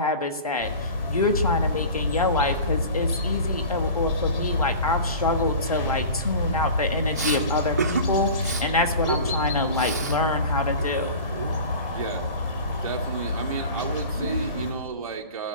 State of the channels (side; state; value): both; inverted; correlation -0.37